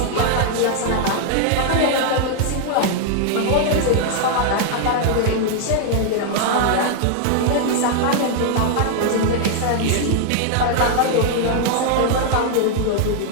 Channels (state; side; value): different; both; correlation 0.00